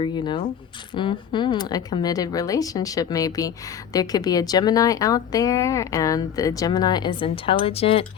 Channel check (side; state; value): right; quieter; 8.8 dB